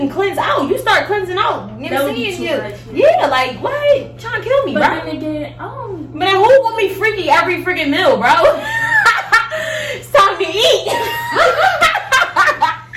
cleanse out. You start cleansing out. You know what I'm saying? Yeah, like what? Trying to kill me, But bro. then again, But then who want me freaky every freaking meal, bro? It's time to eat.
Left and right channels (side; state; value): both; identical; correlation 1.00